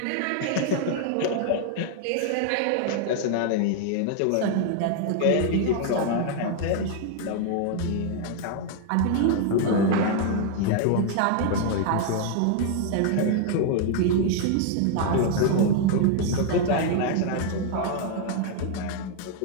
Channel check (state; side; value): different; both; correlation 0.00